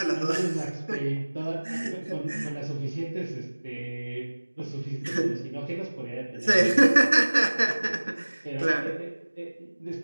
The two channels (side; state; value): both; inverted; correlation -1.00